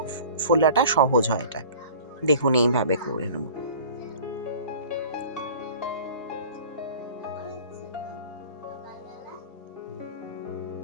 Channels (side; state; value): both; inverted; correlation -0.44